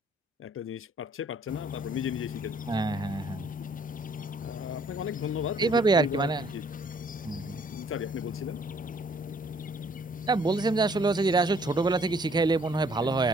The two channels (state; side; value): normal; both; correlation 0.62